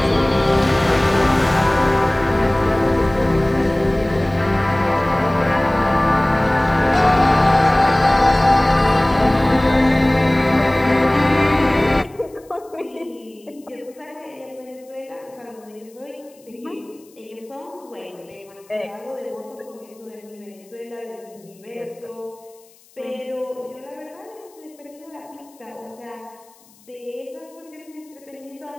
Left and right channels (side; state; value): left; noise; hiss, 29 dB below the sound